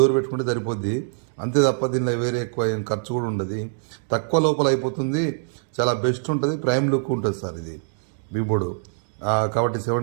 పెట్టుకుంటే సరిపోద్ది. అంతే తప్ప దీనిలో వేరే ఎక్కువ ఏం ఖర్చు కూడా ఉండదు. తక్కువ లోపల అయిపోతుంది. చాలా బెస్ట్ ఉంటుంది. ప్రైమ్ లుక్ ఉంటుంది సార్. ఇది వీబోర్డు కాబట్టి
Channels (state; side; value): silent; left; digital silence